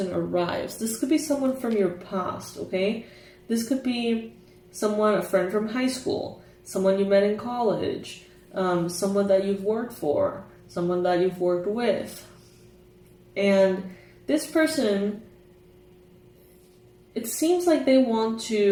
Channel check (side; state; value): both; identical; correlation 1.00